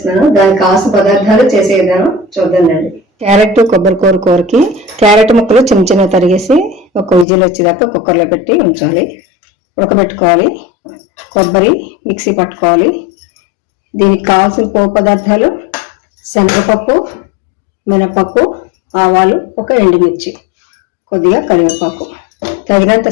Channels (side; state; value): right; drops out; at 7.2 s